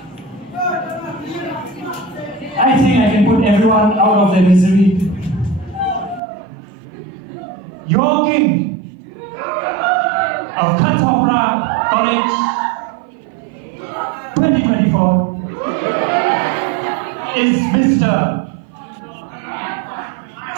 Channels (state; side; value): drops out; left; at 6.2 s